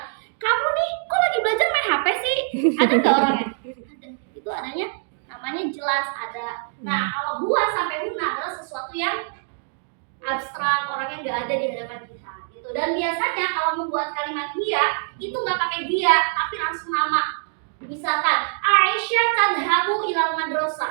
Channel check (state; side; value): silent; left; digital silence